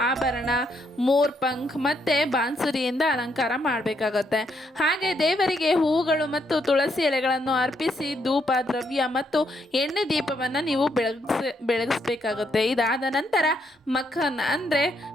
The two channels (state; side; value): normal; both; correlation 0.75